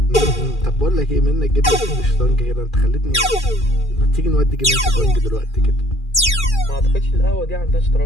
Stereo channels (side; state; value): right; late; 2.4 ms